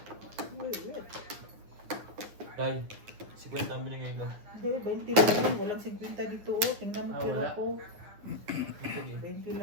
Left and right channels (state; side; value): late; left; 9.7 ms